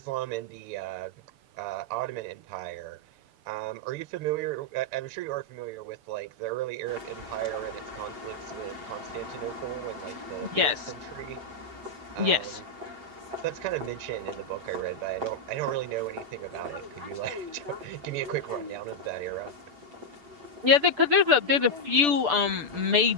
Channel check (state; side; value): late; left; 6.8 ms